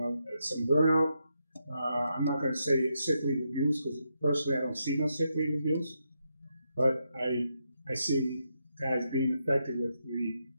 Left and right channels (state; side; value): inverted; both; correlation -0.82